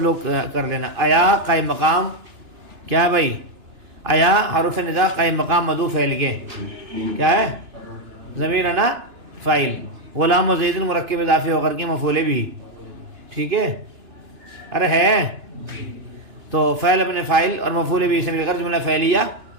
لوگ کر لینا آیا قائم مقام کیا ہے بھائی آیا حرف ندا قائم مقام مدعو فعل کے کیا ہے ضمیر انا فاعل غلام و زید مرکب اضافی ہو کر کے مفعول بھی ٹھیک ہے ارے ہے تو فعل اپنے فاعل اور مفعول بھی سے مل کر جملہ فعلیہ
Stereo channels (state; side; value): late; left; 2.9 ms